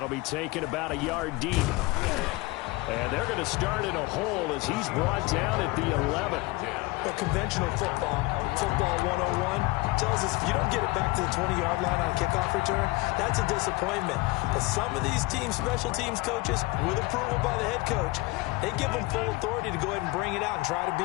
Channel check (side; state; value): right; quieter; 22.9 dB